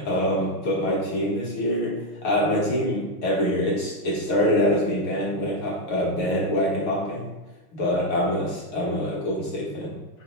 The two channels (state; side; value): late; right; 6.7 ms